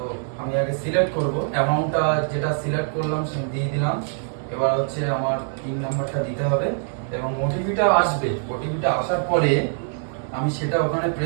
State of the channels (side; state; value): left; silent; digital silence